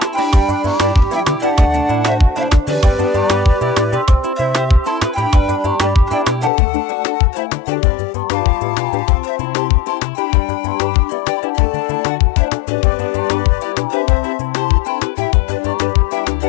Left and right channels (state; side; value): drops out; right; at 6.5 s